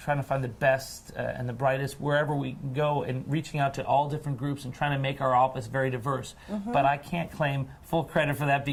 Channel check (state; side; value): identical; both; correlation 1.00